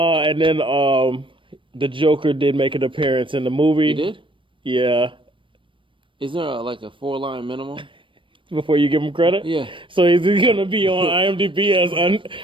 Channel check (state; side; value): late; left; 0.25 ms